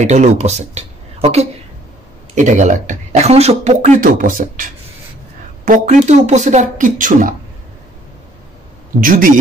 এটা হলো উপসেট। ওকে, এটা গেল একটা। এখন আসো প্রকৃত উপসেট। প্রকৃত উপসেট আর কিচ্ছু না, যদি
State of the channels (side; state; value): both; normal; correlation 0.61